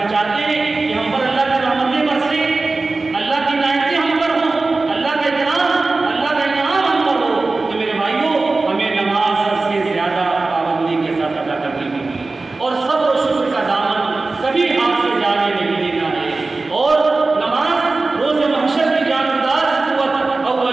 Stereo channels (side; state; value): left; quieter; 3.5 dB